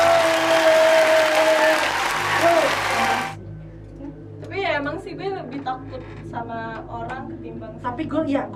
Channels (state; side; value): identical; both; correlation 1.00